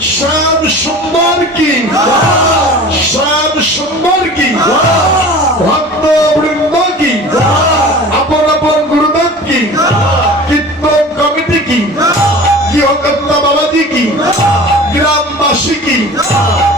শ্যাম সুন্দর কি, শ্যাম সুন্দর কি, ভক্ত বৃন্দ কি, আপন আপন গুরুদেব কি, কীর্তন কমিটি কি, গৃহকর্তা বাবাজি কি, গ্রামবাসী কি,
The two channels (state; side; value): normal; both; correlation 0.40